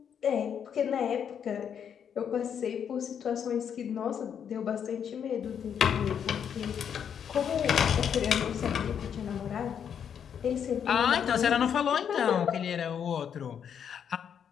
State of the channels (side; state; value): right; quieter; 8.1 dB